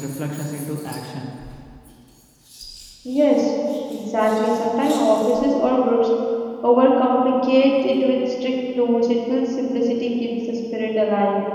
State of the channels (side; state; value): both; identical; correlation 1.00